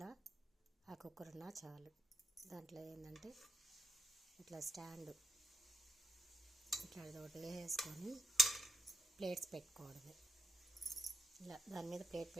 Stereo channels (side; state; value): both; normal; correlation 0.81